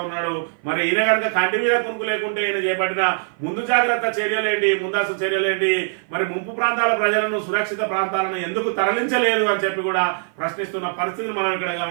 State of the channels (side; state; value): left; silent; 55 dB below the other